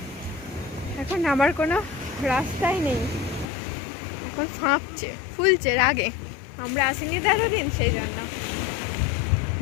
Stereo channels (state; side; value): drops out; right; at 3.5 s